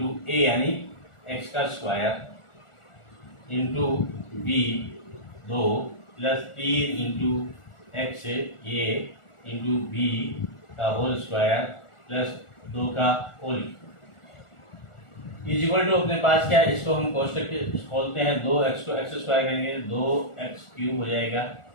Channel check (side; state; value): right; late; 1.4 ms